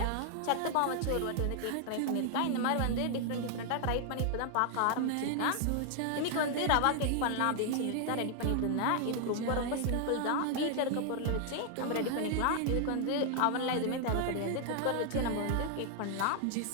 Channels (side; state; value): both; different; correlation 0.00